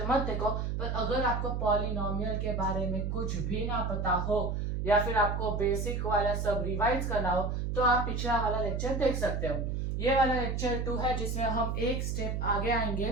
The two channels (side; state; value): right; noise; hum, 1 dB below the sound